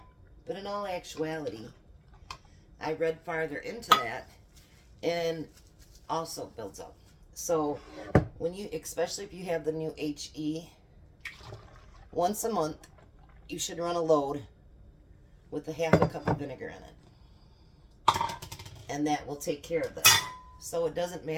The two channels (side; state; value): both; identical; correlation 1.00